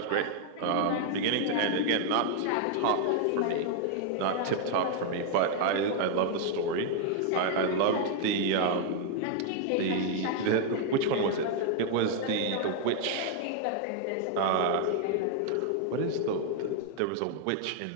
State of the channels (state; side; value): different; both; correlation 0.00